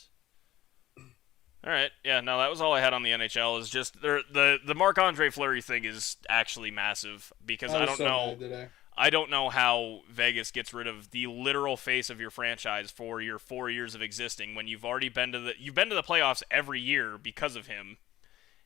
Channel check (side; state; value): right; quieter; 14.7 dB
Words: All right, yeah, no, that was all I had on the NHL. Is just the Marc-Andre Fleury thing is actually massive because I don't know how Vegas gets rid of the literal face of your franchise for your 4 years of existing when you've already been to the playoffs every year because of him,